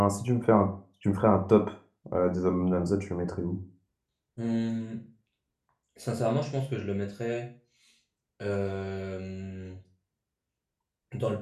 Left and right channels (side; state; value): both; identical; correlation 1.00